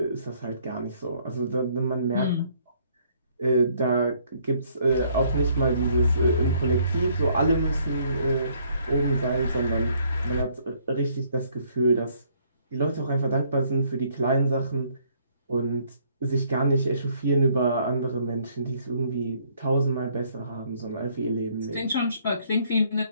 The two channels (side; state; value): both; inverted; correlation -0.65